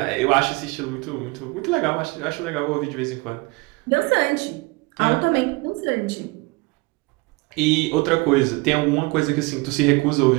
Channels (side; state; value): left; quieter; 25.4 dB